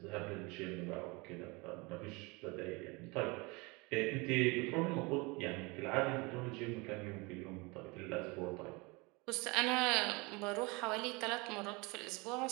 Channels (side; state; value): left; quieter; 26.6 dB